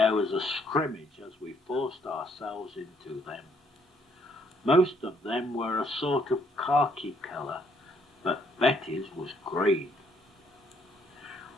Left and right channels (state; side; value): normal; both; correlation 0.67